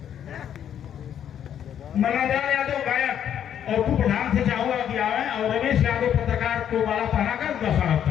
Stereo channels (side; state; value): right; quieter; 9.5 dB